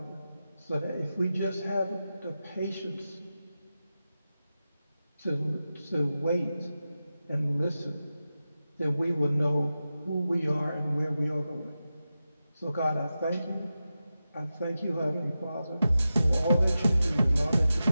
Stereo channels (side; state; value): both; inverted; correlation -0.92